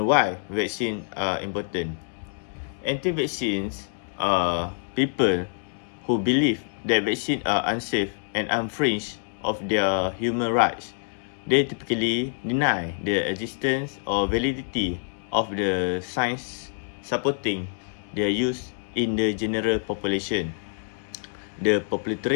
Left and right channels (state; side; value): silent; right; digital silence